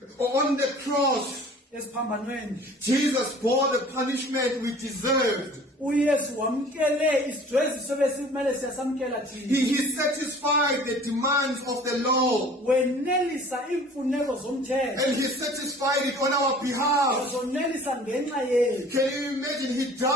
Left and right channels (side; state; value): both; normal; correlation 0.47